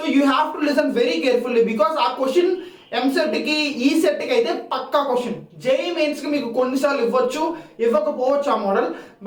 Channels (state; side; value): identical; both; correlation 1.00